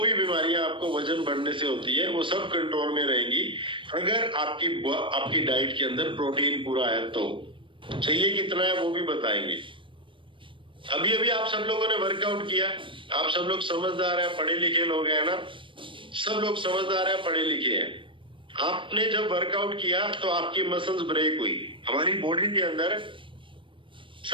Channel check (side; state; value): left; late; 0.25 ms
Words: बीमारियां आपको वजन बढ़ने से होती है वो सब कंट्रोल में रहेंगी अगर आपकी डाइट के अंदर प्रोटीन पूरा है। तो चाहिए कितना है वो भी बताएंगे। अभी अभी आप सब लोगों ने वर्कआउट किया, आप सब लोग समझदार है, पढ़े लिखे लोग हैं ना, सब लोग समझदार है, पढ़े लिखे हैं। आपने जब वर्कआउट किया तो आपकी मसल्स ब्रेक हुई। हमारी बॉडी के अंदर